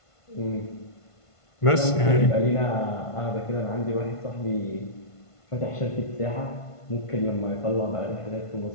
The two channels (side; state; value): right; late; 1.5 ms